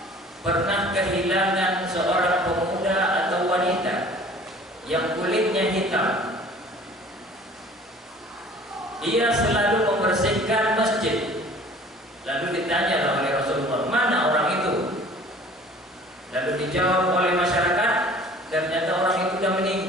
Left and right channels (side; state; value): both; normal; correlation 0.49